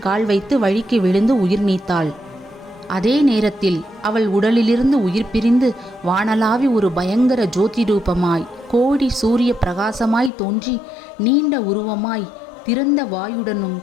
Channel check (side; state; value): right; drops out; at 10.3 s